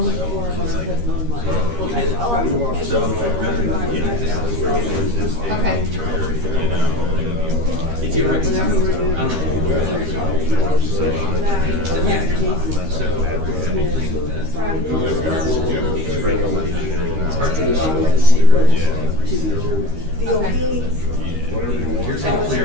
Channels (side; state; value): left; late; 13 ms